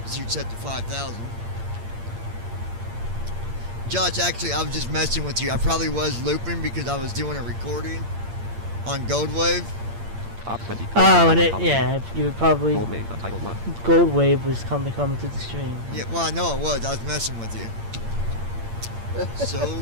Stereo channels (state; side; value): late; left; 8.7 ms